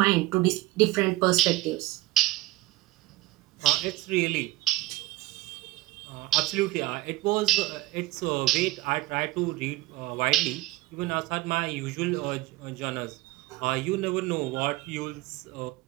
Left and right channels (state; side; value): quieter; left; 18.2 dB